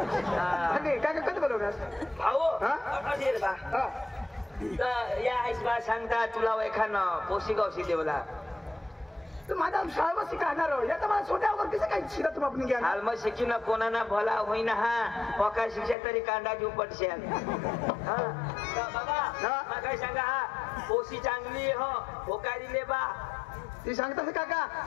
काय कधी बोलवणार भाऊ अधीर बा या आईशबा सांगता तुला एखादं पोशी गावशी देवला माझा शाळा शिकणार या तर मला छोट्यावर कसं काही शिकत आपण घ्या हाल शिकी ना कोणा ना भला होईना हा पका शिक्षा तरी कांदा घेऊ पडशे बाबा काय सांगा हा पोशी चांगली हो होकारी ले बा ती सांगतास काका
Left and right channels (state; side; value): drops out; right; at 16.0 s